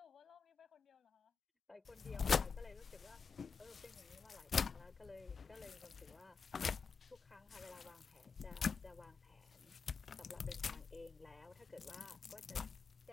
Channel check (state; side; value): quieter; right; 5.5 dB